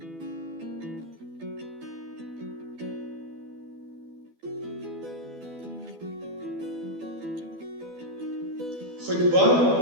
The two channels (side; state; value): left; late; 12 ms